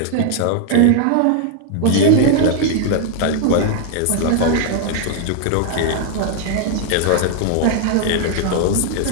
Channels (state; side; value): different; both; correlation 0.00